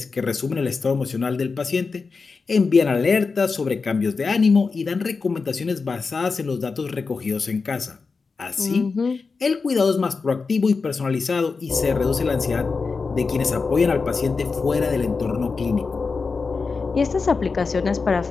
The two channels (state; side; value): quieter; right; 4.6 dB